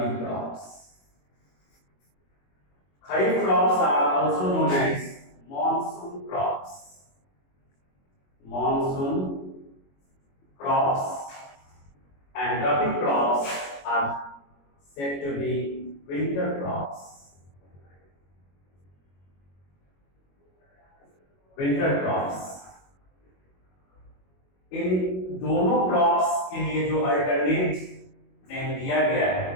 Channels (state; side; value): late; right; 21 ms